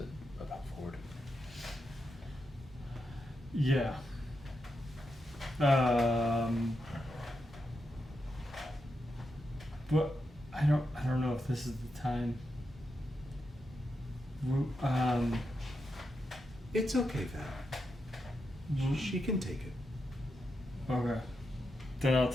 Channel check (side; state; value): both; normal; correlation 0.85